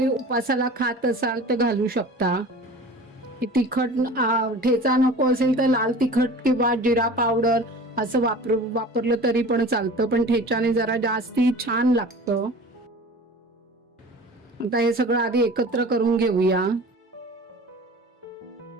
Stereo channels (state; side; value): normal; both; correlation 0.40